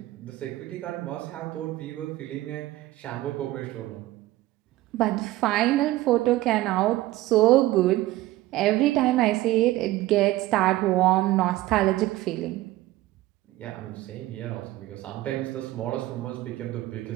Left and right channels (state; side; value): quieter; left; 16.8 dB